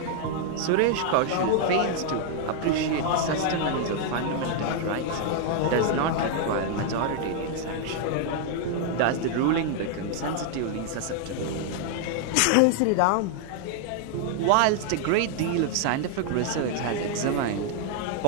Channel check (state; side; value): different; both; correlation 0.00